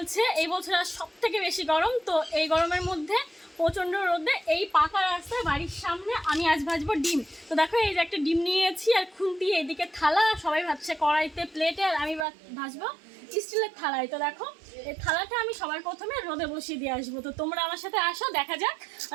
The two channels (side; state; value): left; drops out; at 12.2 s